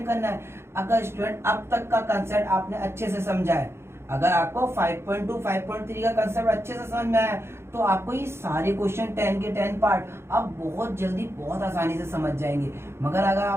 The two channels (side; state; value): left; late; 0.12 ms